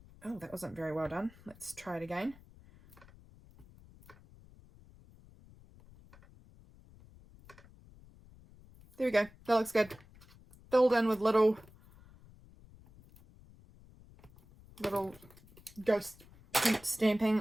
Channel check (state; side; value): noise; left; rumble, 24 dB below the sound